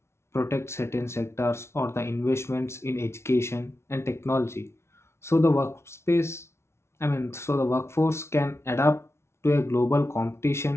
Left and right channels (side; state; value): right; late; 0.13 ms